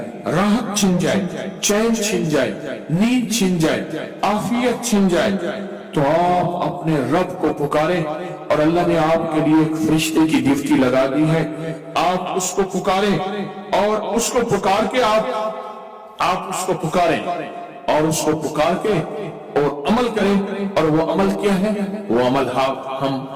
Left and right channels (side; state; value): both; identical; correlation 1.00